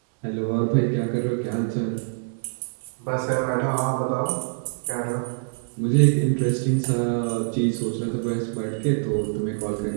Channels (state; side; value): silent; left; digital silence